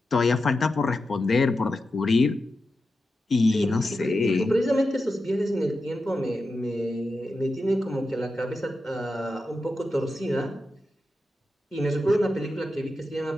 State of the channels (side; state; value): both; normal; correlation 0.90